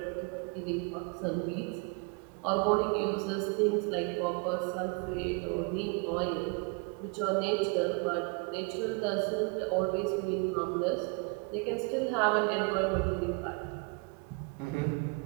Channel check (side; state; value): left; quieter; 32.1 dB